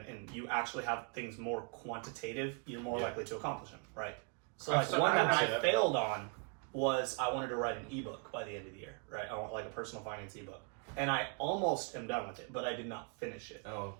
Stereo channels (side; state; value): left; quieter; 37.7 dB